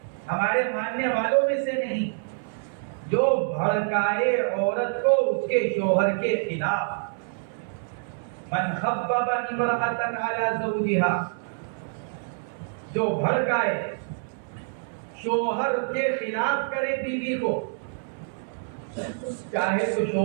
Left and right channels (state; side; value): silent; left; 61 dB below the other